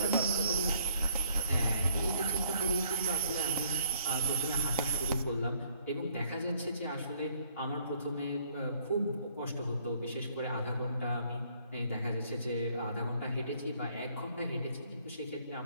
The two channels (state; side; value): inverted; both; correlation -0.64